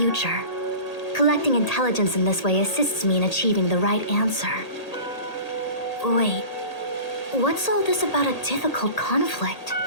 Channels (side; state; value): right; late; 1.8 ms